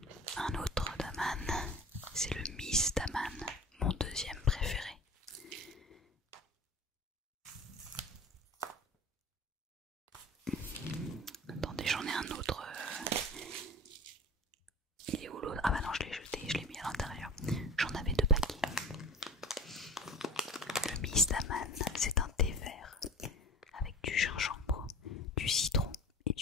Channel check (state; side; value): normal; both; correlation 0.37